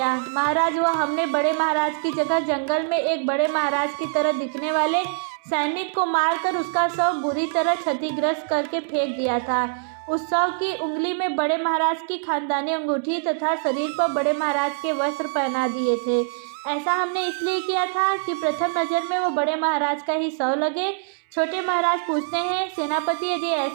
महाराज, वह हमने बड़े महाराज की जगह जंगल में एक बड़े महाराज की तरह दिखने वाले सैनिक को मारकर उसका शव बुरी तरह क्षतिग्रस्त करके फेंक दिया था। उस शव की उंगली में बड़े महाराज की खानदानी अंगूठी तथा शरीर पर बड़े महाराज के वस्त्र पहना दिए थे। ऐसा हमने इसलिए किया था कि प्रथम नज़र में वो बड़े महाराज का ही शव लगे। छोटे महाराज पूछते हैं, सेनापति, यदि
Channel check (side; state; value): left; silent; 63 dB below the other